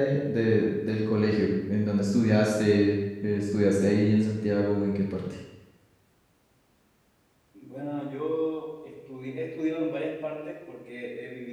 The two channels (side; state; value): both; identical; correlation 1.00